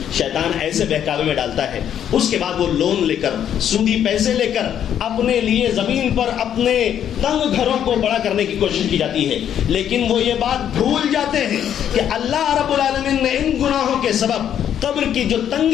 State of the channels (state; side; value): quieter; right; 9.7 dB